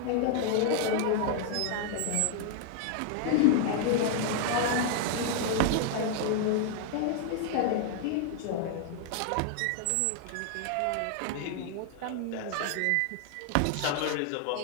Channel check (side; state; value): both; different; correlation 0.00